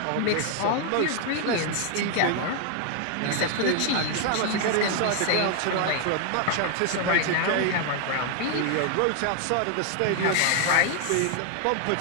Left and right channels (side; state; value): both; different; correlation 0.00